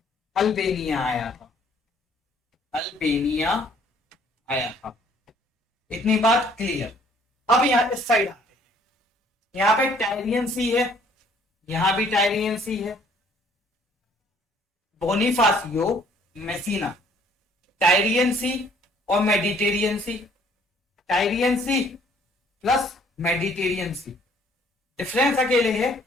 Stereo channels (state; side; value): normal; both; correlation 0.60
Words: अल्बेनिया आया था, अल्बेनिया आया था। इतनी बात क्लियर। अब यहां इस साइड आते हैं, यहां पे टायरियन सी है, यहां भी टायरियन सी है। बोनीफासियो, मेसिना, टायरियन सी और मेडिटेरियन सी, टायरियन सी प्लस मेडिटेरियन सी। डिफरेंस अकेले है